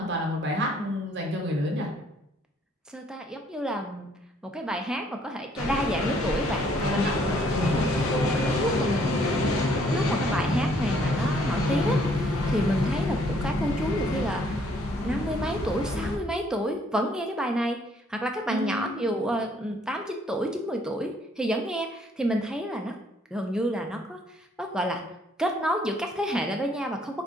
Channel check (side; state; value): both; normal; correlation 0.64